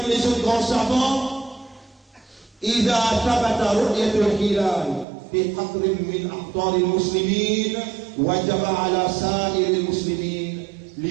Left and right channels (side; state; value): left; drops out; at 5.1 s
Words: les autres grands savants. إذا ثبت رؤية الهلال في قطر من أقطار المسلمين وجب على سائر المسلمين